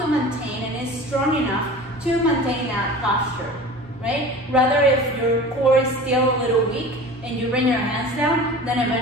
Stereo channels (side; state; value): both; normal; correlation 0.38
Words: maintain and is strong enough to maintain that posture, right? Rather, if your core is still a little weak and you bring your hands down, then